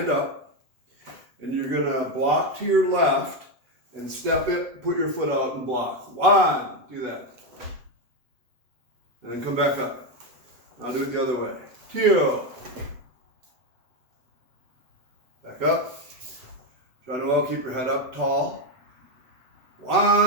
up, and you're going to block to your left, and step it, put your foot out and block. 1, do that. And then come back up. Now do it the other way. 2. Back up. Try to keep your head up tall.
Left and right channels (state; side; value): late; left; 7.7 ms